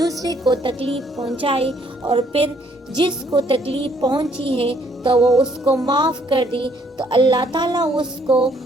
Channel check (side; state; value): both; normal; correlation 0.66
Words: کو تکلیف پہنچائے اور پھر جس کو تکلیف پہنچی ہے تو وہ اس کو معاف کر دے تو اللہ تعالیٰ اس کو